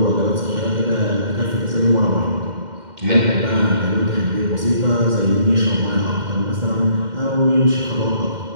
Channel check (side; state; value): left; late; 2.1 ms